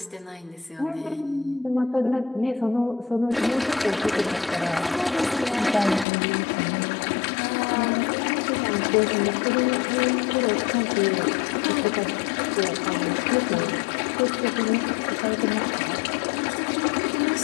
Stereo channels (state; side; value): drops out; right; at 6.1 s